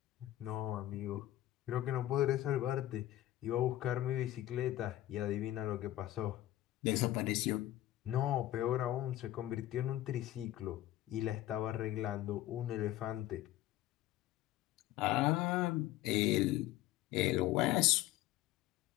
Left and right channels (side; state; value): right; quieter; 14.5 dB